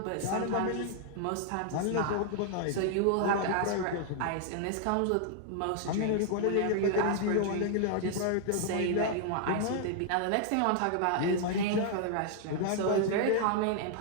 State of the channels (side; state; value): both; different; correlation -0.01